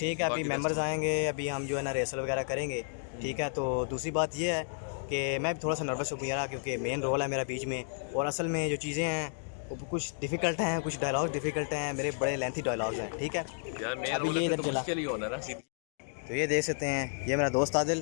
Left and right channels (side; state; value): right; silent; digital silence